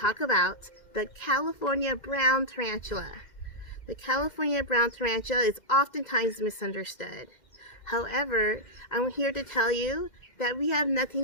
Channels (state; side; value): late; right; 2.1 ms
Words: about the California Brown Tarantula. The California Brown Tarantula is oftentimes misunderstood. However, I'm here to tell you that we have